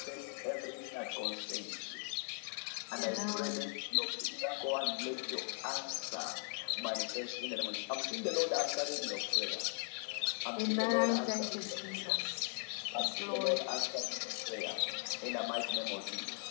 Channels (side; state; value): right; silent; 52 dB below the other